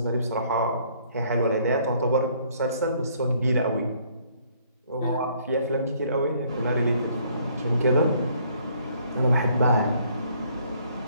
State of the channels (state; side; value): inverted; both; correlation -0.63